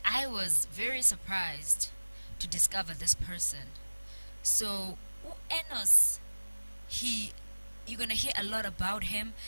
I was very surprised to discover this person. So Enos, he you're gonna hear a lot about him.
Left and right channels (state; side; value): inverted; both; correlation -1.00